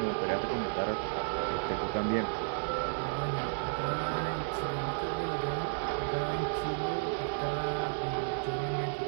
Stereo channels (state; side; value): silent; left; digital silence